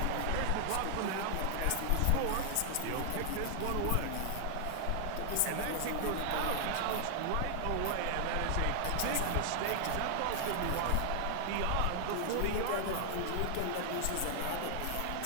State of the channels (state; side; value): different; both; correlation 0.00